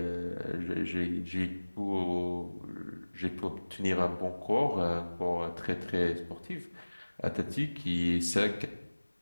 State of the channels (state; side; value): inverted; both; correlation -1.00